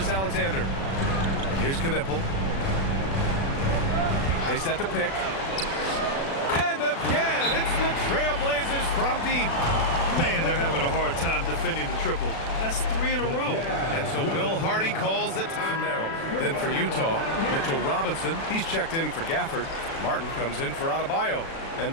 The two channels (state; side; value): late; right; 36 ms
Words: Here's Knippel. They set the pick. And again, it's the Trailblazers from deep. Man, they're having a hard time defending the triple. That's 3 in a row. And so Will Hardy calls the time for Merrill. Then for Utah, Mitchell Robinson. He's checked in for Gafford. Martin comes in for Adebayo.